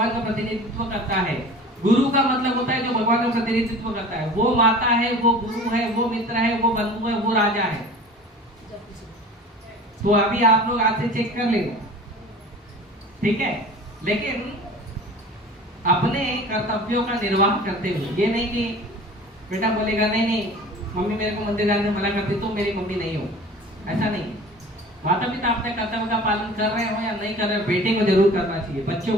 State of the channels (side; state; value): both; normal; correlation 0.41